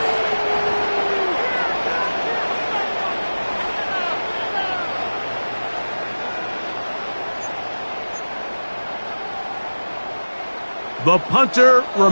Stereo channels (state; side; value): inverted; both; correlation -1.00